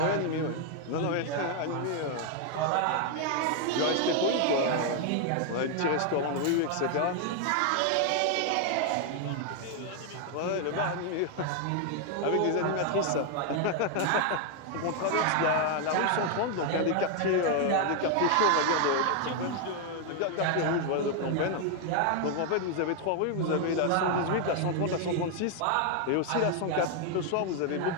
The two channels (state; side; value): different; both; correlation 0.00